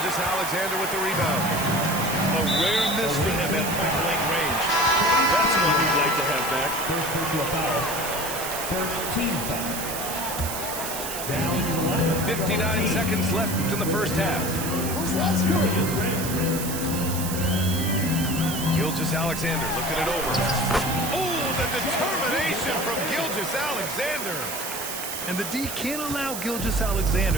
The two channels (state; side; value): noise; right; hiss, 6 dB below the sound